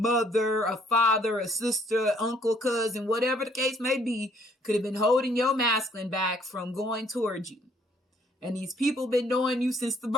a father, a sister, uncle, cousin, whatever the case may be, could have been holding your masculine back from going towards you. And these people been knowing you since the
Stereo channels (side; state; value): both; normal; correlation 0.65